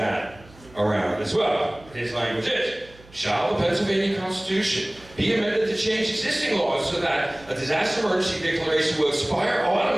around as well. His language is, shall the Pennsylvania Constitution be amended to change existing laws so that a disaster emergency declaration will expire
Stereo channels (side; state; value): right; noise; hum, 24 dB below the sound